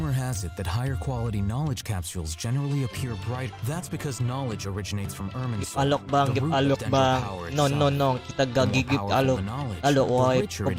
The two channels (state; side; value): identical; both; correlation 1.00